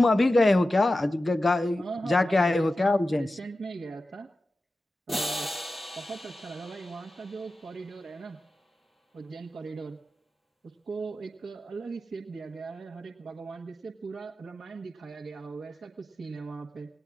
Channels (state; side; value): normal; both; correlation 0.93